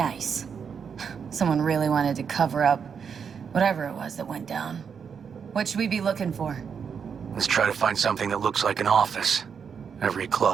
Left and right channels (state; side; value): quieter; left; 6.7 dB